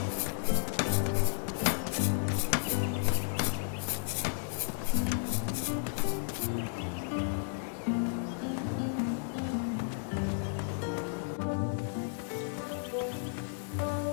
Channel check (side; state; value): right; silent; digital silence